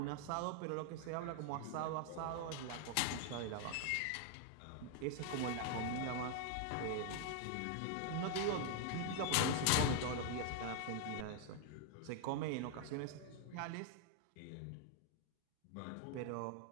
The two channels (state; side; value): different; both; correlation 0.00